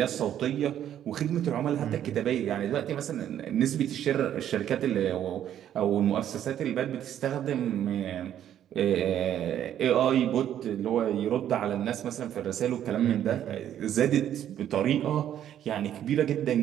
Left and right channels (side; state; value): left; quieter; 10.6 dB